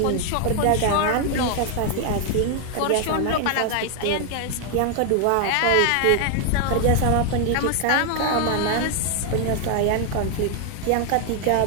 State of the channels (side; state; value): both; different; correlation 0.00